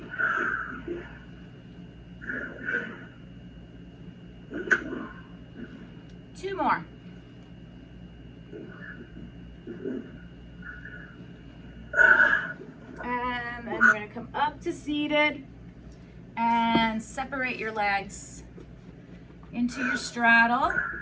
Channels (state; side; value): identical; both; correlation 1.00